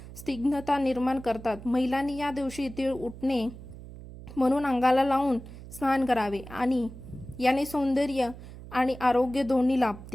स्निग्धता निर्माण करतात. महिलांनी या दिवशी तीळ उठणे म्हणून अंगाला लावून स्नान करावे आणि याने सौंदर्य आणि आरोग्य दोन्ही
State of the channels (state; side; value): noise; right; hum, 15 dB below the sound